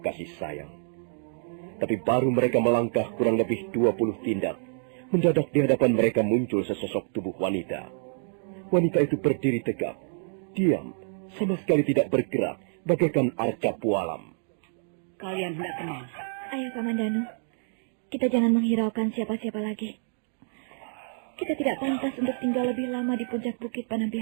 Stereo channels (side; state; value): left; silent; digital silence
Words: sayang. Tapi baru mereka melangkah kurang lebih 20 tindak, mendadak di hadapan mereka muncul sesosok tubuh wanita. Wanita itu berdiri tegak, diam, sama sekali tidak bergerak, bagaikan arca pualam. Kalian hendak kemana? Ayo, Kamandanu. Kita jangan menghiraukan siapa-siapa lagi. Kita tidak pantas untuk tinggal lebih lama di puncak Bukit